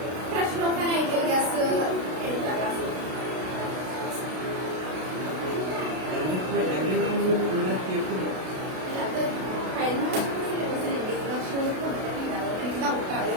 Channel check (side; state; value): left; late; 32 ms